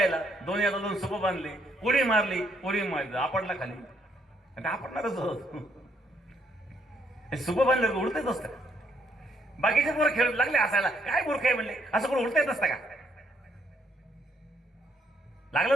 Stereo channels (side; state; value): both; normal; correlation 0.71